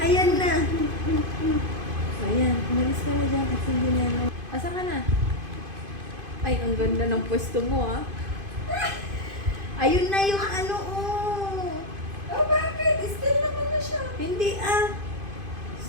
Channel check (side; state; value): left; late; 2.5 ms